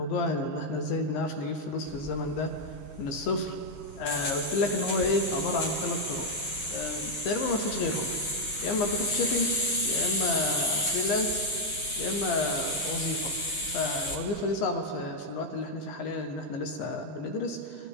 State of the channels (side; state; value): right; late; 9.8 ms